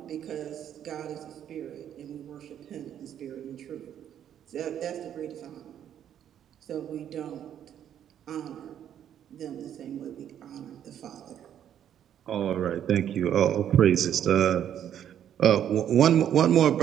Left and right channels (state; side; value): quieter; left; 9.9 dB